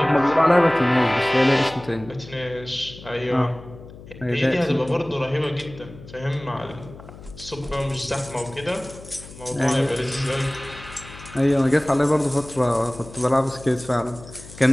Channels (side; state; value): left; noise; hum, 17 dB below the sound